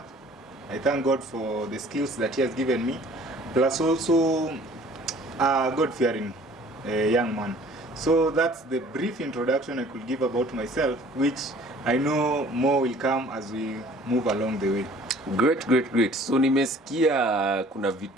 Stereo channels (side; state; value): both; normal; correlation 0.52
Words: I thank God for the skills that He has given me, plus also a God-fearing young man. So that's the brief introduction I could give about myself, which I know more will come as we move along the way. Great. So nimesikia kuna